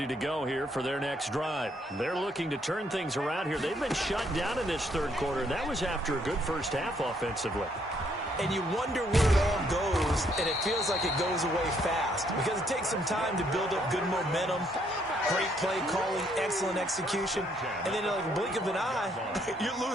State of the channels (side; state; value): both; normal; correlation 0.70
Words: to go here for their next drive. They're looking to turn things around here. They've been shut down in this 3rd quarter, and that was after a good first half offensively. And you wonder where it all goes, and it feels like it goes away fast because it takes some time to build up good momentum, great play calling, excellent execution, and then like a blink of an eye, you're